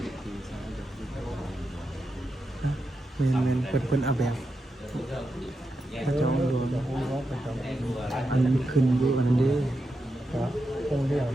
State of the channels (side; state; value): both; normal; correlation 0.87